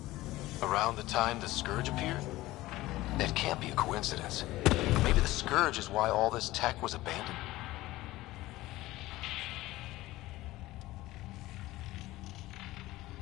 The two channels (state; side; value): quieter; right; 17.7 dB